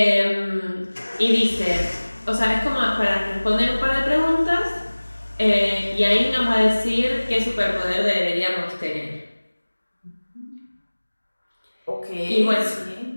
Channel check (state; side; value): inverted; both; correlation -1.00